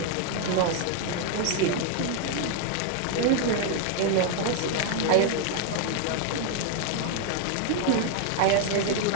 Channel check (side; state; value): both; different; correlation 0.00